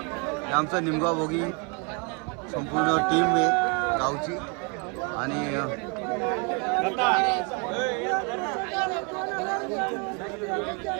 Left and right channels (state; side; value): quieter; left; 33.4 dB